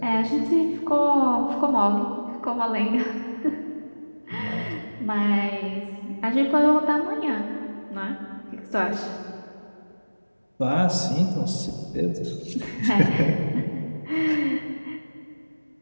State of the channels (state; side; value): inverted; both; correlation -1.00